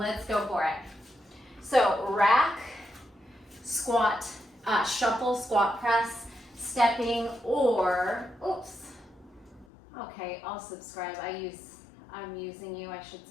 go for it. So rack, squat, shuffle, squat press, stepping, or, oops. Okay, I'll subscribe. I'm using you, I should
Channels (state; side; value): drops out; right; at 9.7 s